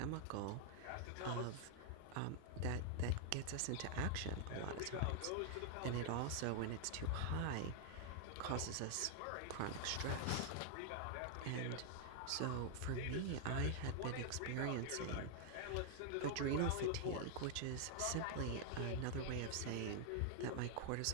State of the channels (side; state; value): both; different; correlation 0.00